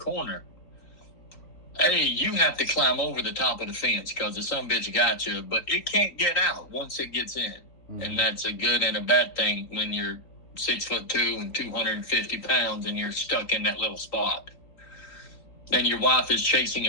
hey, you have to climb over the top of the fence because the son bitch got you, but it can't get out once it gets in. Mm-hmm. And that's a good and a bad thing when you're 6'2" and 250 pounds and you're stuck in that little spot. And your wife is chasing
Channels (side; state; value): right; late; 3.8 ms